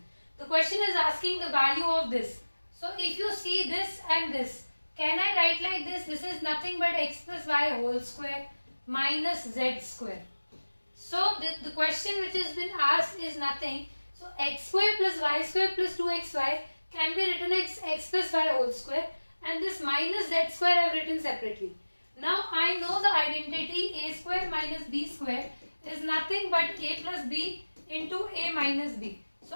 The question is asking the value of this. So if you see this and this, can I write like this? This is nothing but x plus y whole square minus z square. So the question which has been asked is nothing. So x square plus y square plus 2xy can be written as x plus y whole square, and this minus z square I have written separately. Now I know the identity a square minus b square is nothing but a plus b into a minus b.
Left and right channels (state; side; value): inverted; both; correlation -1.00